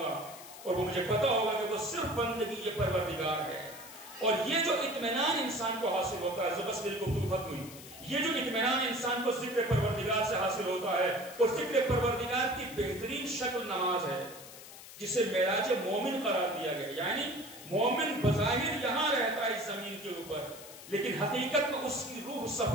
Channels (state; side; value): noise; left; hiss, 16 dB below the sound